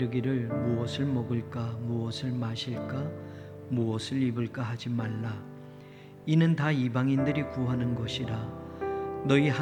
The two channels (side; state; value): both; identical; correlation 1.00